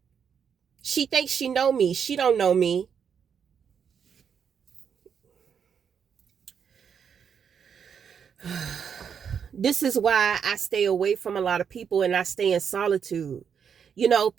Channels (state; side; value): quieter; left; 7.3 dB